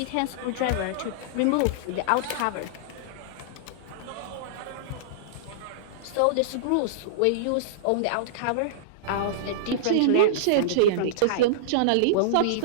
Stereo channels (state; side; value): different; both; correlation -0.02